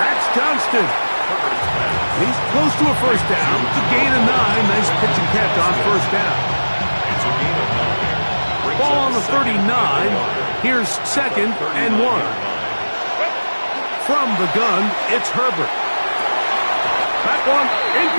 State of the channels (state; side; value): inverted; both; correlation -1.00